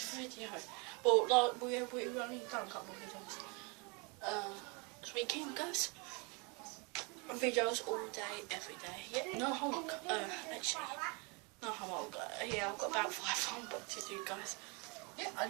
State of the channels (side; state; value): left; quieter; 31.2 dB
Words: video. But like, we only done a couple of videos. This weekend guys. Videos all day, every day. Yeah, no homework. Actually, no homework. Yeah, I've got about 5 homework to do guys. Yeah, I